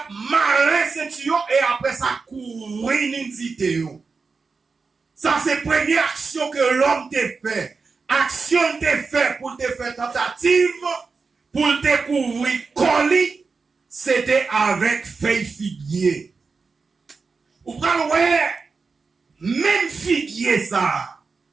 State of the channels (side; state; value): left; quieter; 4.6 dB